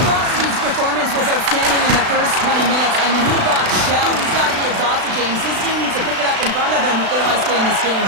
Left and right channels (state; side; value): late; left; 36 ms